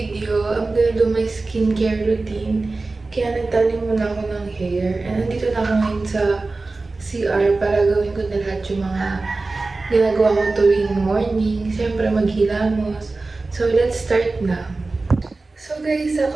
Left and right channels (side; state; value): left; quieter; 3.5 dB